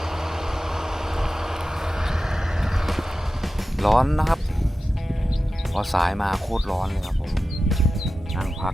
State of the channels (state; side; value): normal; both; correlation 0.93